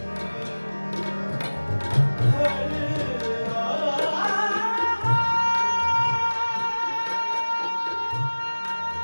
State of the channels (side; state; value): both; inverted; correlation -1.00